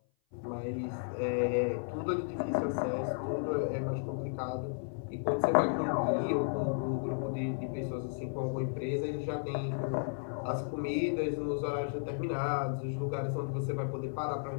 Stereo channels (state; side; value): silent; right; 55 dB below the other